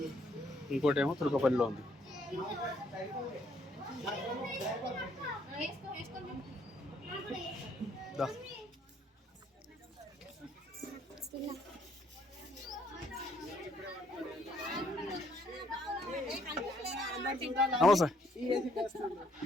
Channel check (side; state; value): both; normal; correlation 0.67